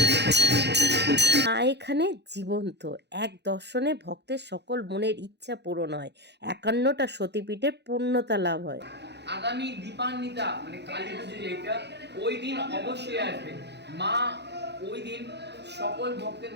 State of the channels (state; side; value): late; left; 0.50 ms